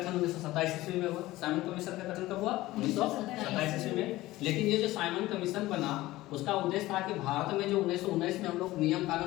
1927 ईस्वी में हुआ। साइमन कमीशन का गठन कब हुआ 1927 ईस्वी में। लेकिन ये जो साइमन कमीशन बना उसका उद्देश्य था कि भारत में जो 1919 में हम लोग नियम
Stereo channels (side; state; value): right; quieter; 17.5 dB